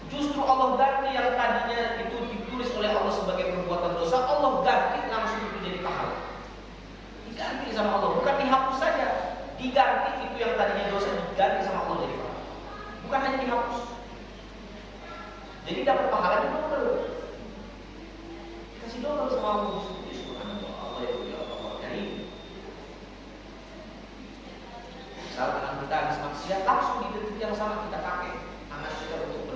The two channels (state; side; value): identical; both; correlation 1.00